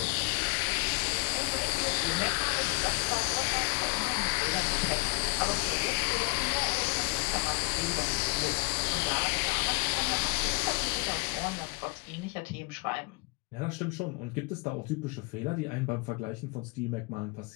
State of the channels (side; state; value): right; quieter; 30.2 dB